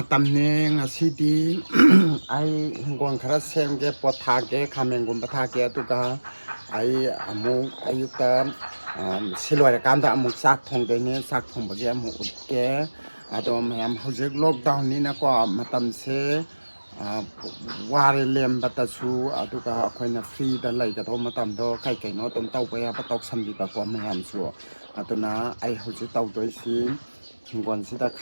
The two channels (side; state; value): both; inverted; correlation -1.00